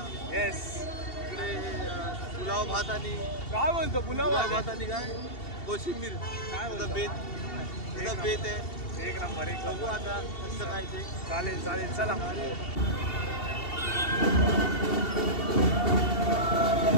येस. इकडे पुलाव भात आणि काय बोलतो पुलाव भात आणि काय कोशिंबीर काय बोलतो बेत आहे. एक नंबर. एक बघू आता कसं काय ते. चालेल चालेल चला.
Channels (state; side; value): late; right; 2.7 ms